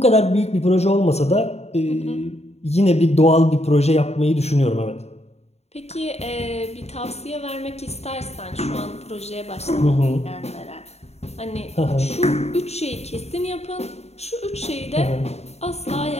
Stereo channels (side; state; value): right; late; 0.31 ms